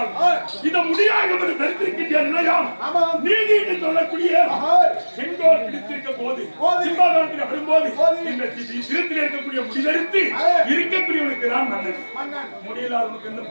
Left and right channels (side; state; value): both; inverted; correlation -1.00